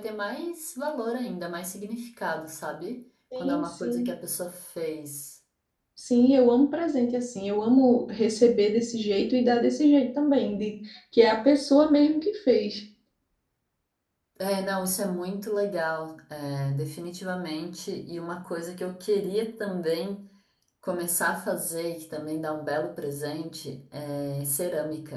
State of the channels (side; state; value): both; identical; correlation 1.00